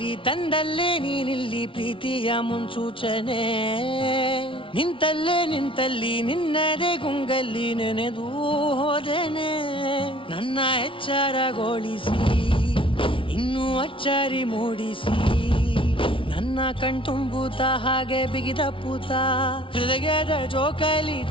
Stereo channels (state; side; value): late; right; 0.25 ms